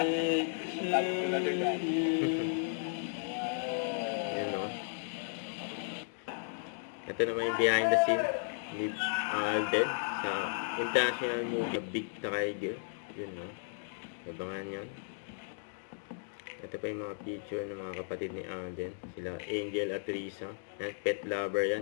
birthday to you. Yan, oh. Ito naman yung behind the scene ni Alden sa international movie Big Tiger. Yun, oh. Abangan yan. Ito pa yung mga picture ng mga kapatid ni Alden. Sila Angel at Risa. Yan, pet lover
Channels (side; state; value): right; silent; digital silence